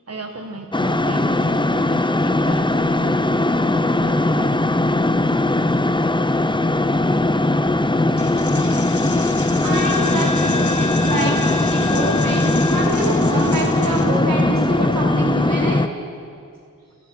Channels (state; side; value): normal; both; correlation 0.67